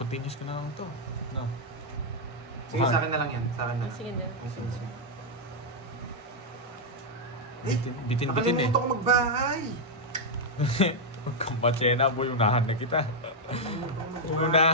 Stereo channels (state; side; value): normal; both; correlation -0.02